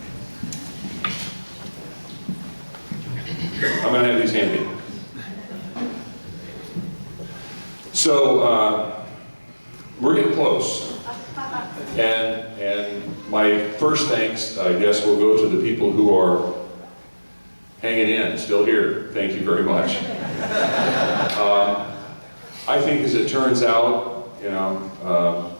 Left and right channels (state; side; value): inverted; both; correlation -1.00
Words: I'm going to have these handy. So, we're getting close. And my first thanks, I guess, will go to the people who are hanging in, still here. Thank you very much. I think as it turns out, you know,